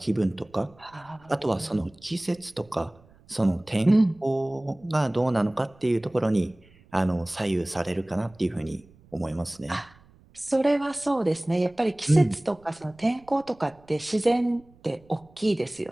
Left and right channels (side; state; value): right; noise; rumble, 28 dB below the sound